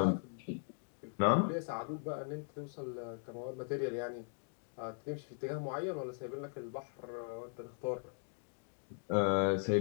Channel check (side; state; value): right; silent; 52 dB below the other